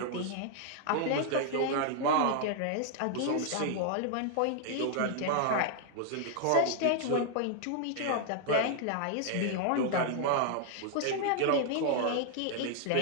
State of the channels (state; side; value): different; both; correlation 0.00